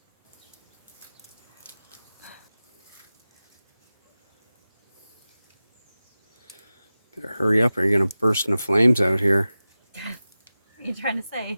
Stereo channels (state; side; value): inverted; both; correlation -0.95